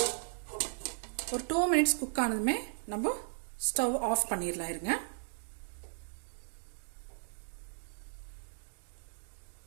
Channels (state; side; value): silent; left; digital silence